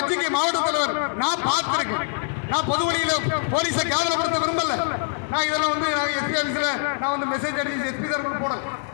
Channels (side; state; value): right; silent; digital silence